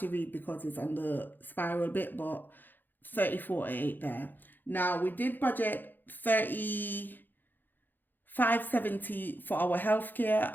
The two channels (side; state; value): right; late; 0.089 ms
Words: read because it's on the spiral bit, but 34.8 there. Now we did budget 35.70 for our healthcare,